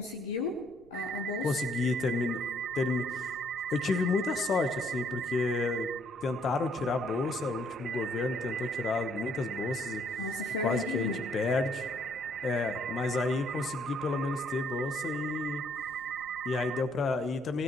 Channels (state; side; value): noise; left; rumble, 29 dB below the sound